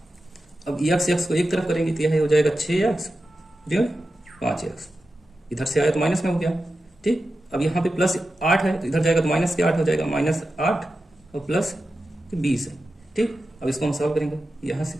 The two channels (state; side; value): normal; both; correlation 0.92